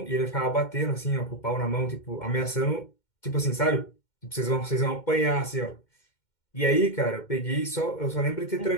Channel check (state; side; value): late; right; 2.2 ms